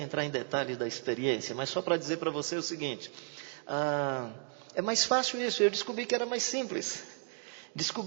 em detalhes da experiência, mas só para dizer para você o seguinte... É mais fácil isso, eu descobri que era mais simples.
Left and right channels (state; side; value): silent; left; 55 dB below the other